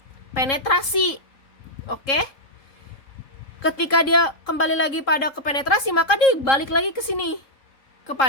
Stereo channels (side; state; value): right; late; 3.7 ms